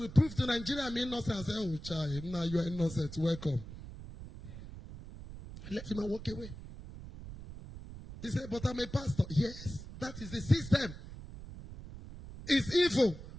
prove to Nigeria I'm innocent. I said, oh, child, now you are innocent. Welcome. I let him walk away. He said, but I'm a pastor. Yes, that is the system. It's evil.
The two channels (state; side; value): noise; right; rumble, 12 dB below the sound